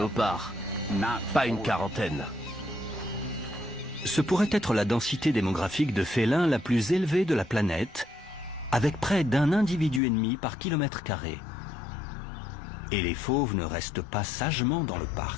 pas une quarantaine. Ce pourrait être la densité démographique de félins la plus élevée de la planète, avec près d'un individu et demi par kilomètre carré. Et les fauves ne restent pas sagement dans le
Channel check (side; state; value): right; drops out; at 10.0 s